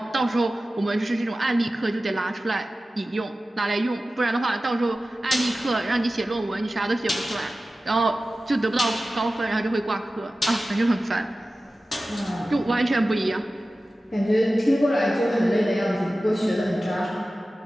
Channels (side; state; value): both; normal; correlation 0.95